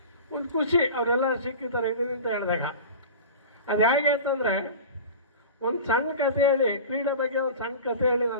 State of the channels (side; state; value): both; inverted; correlation -0.34